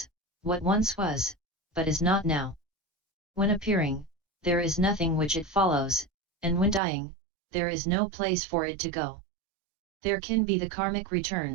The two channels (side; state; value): left; drops out; at 6.8 s